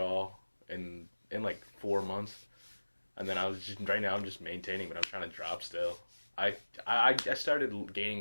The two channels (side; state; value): both; inverted; correlation -1.00